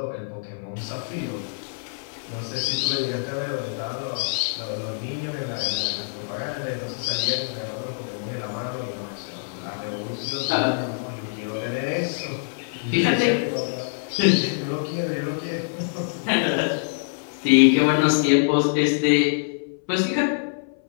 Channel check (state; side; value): silent; right; 62 dB below the other